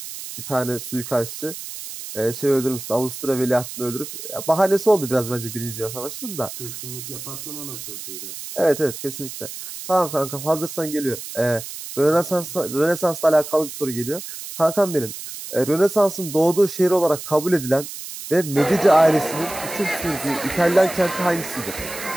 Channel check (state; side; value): noise; right; hiss, 10 dB below the sound